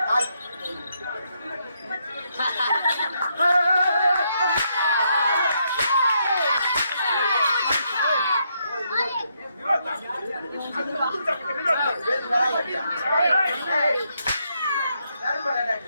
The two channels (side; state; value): both; inverted; correlation -0.77